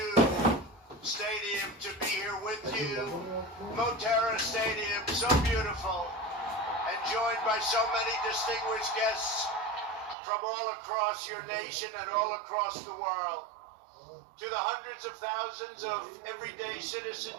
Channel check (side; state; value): left; drops out; at 10.2 s